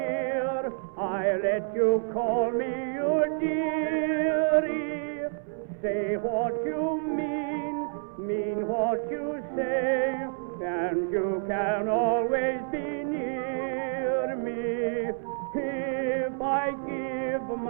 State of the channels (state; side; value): silent; left; 59 dB below the other